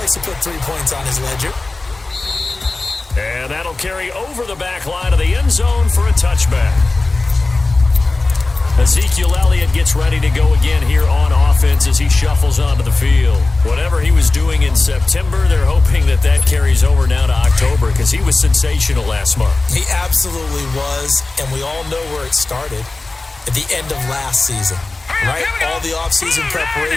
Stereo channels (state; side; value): quieter; right; 3.3 dB